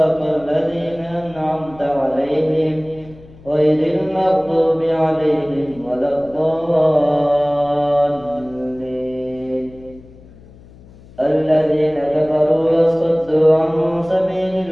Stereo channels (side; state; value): left; noise; hum, 22 dB below the sound